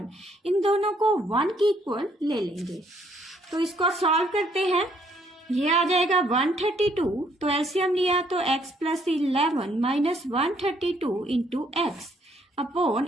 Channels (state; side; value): normal; both; correlation 0.67